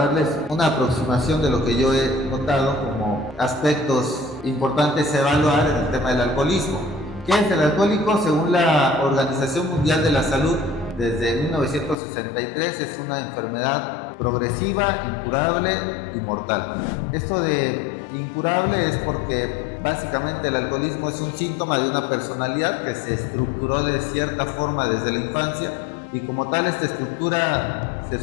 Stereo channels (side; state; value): right; drops out; at 12.0 s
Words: una aproximación de lo que yo he notado como aspectos importantes a evaluar en el tema del alcoholismo. ¿Qué es el alcohólico? Según la Organización Mundial de la Salud, desde 1963 es una enfermedad progresiva, incurable y mortal. Esto de incurable es porque básicamente el alcoholismo es un síntoma de una personalidad que se estructuró de cierta forma desde la infancia, y como tal esta estructura se